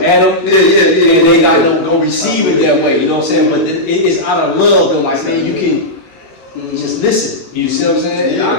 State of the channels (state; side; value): late; right; 16 ms